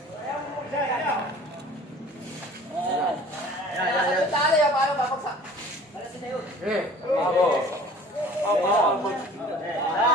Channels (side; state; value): both; normal; correlation 0.47